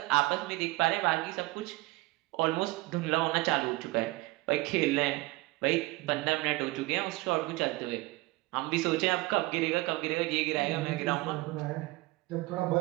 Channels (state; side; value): quieter; left; 21.4 dB